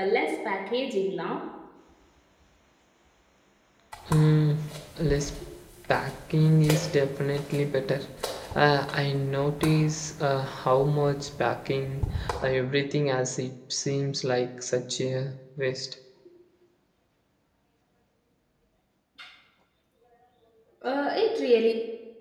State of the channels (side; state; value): both; identical; correlation 1.00